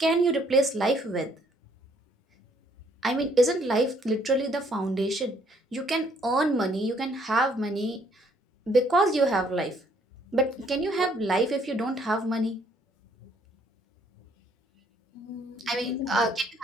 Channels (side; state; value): both; normal; correlation 0.66